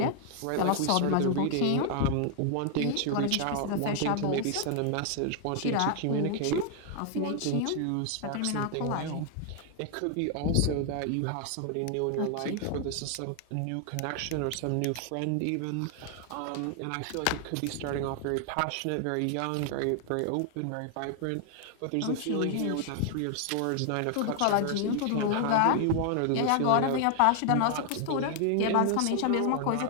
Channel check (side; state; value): both; different; correlation 0.00